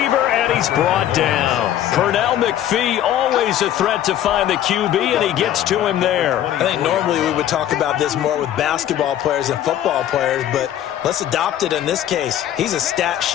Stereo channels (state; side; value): quieter; right; 11.5 dB